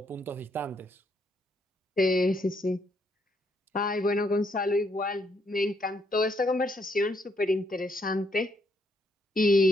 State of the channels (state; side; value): normal; both; correlation 0.73